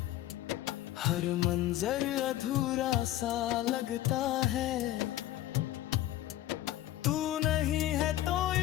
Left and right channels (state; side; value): quieter; right; 14.1 dB